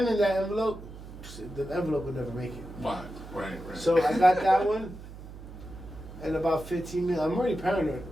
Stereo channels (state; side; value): noise; right; hum, 14 dB below the sound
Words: in that envelope, the envelope would never make it. Right. So I got that one. And about 15 minutes, I'm already paranoid.